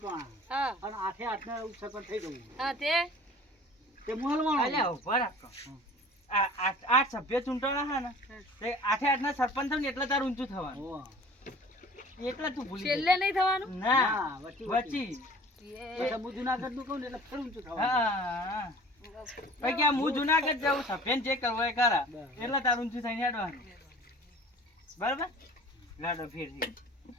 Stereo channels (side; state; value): both; normal; correlation 0.45